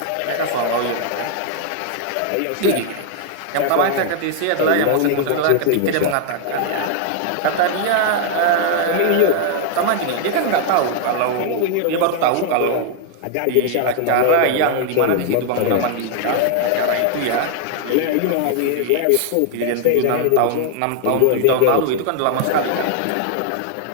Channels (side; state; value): both; different; correlation 0.00